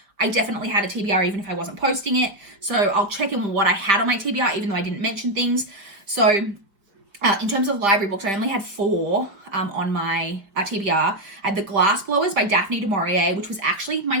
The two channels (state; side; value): late; left; 5.0 ms